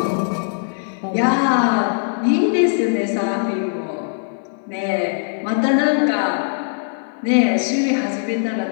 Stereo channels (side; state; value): right; silent; 57 dB below the other